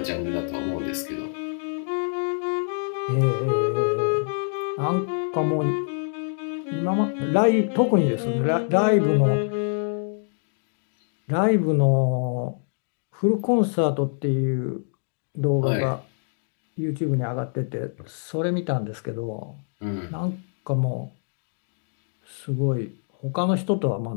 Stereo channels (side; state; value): right; silent; digital silence